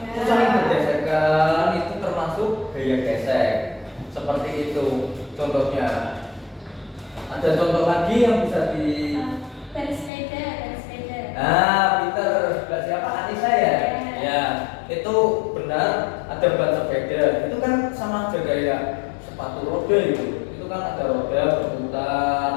Itu saling bergesekan, itu termasuk gaya gesek. Seperti itu contohnya. Ada contoh lagi yang bisa di Bersepeda. Nah, Peter, sebelah siapa? Anissa ya? Ya, itu benar ada ban sepeda. Itu kan sama aja kayak sepatu roda itu. Itu kan ada roda berputar,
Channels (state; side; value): drops out; right; at 10.1 s